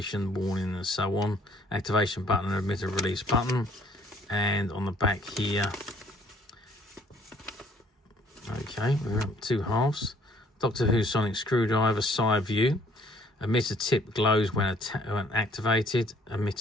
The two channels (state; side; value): normal; both; correlation 0.61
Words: warning and so on, activation button and emitter release button. And on the back here, okay, we're up 2 halves. Doctor Who sonic screwdriver side view, emitter tip glows when activated,